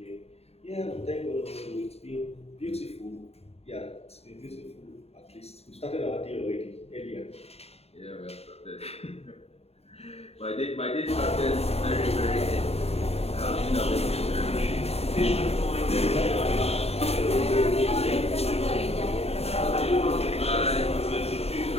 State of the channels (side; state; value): right; late; 0.30 ms